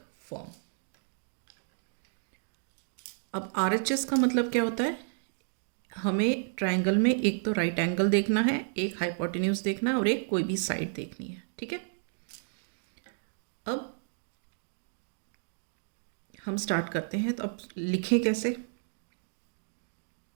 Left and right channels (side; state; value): left; silent; digital silence